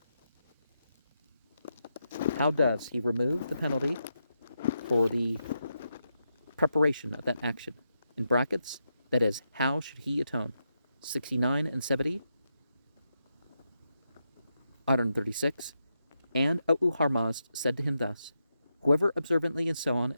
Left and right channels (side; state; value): both; inverted; correlation -0.84